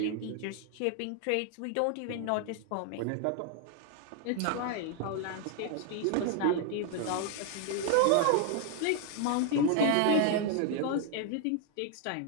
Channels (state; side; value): different; both; correlation 0.00